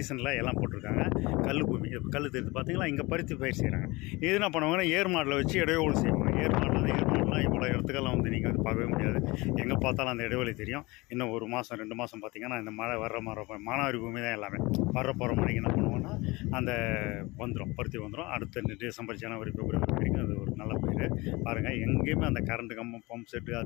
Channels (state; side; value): quieter; right; 23.2 dB